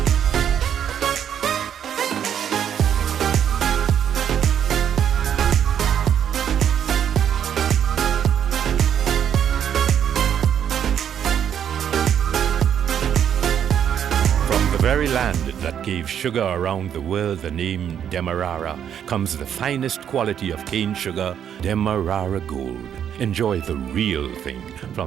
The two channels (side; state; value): left; quieter; 9.1 dB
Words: The very land that gave sugar around the world the name Demerara comes the finest quality of cane sugar, Demerara Gold. Enjoy the real thing